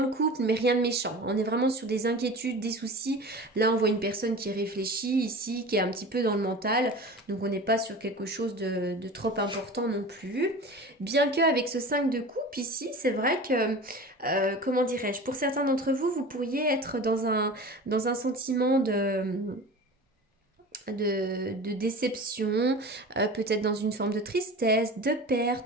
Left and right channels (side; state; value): both; normal; correlation 0.35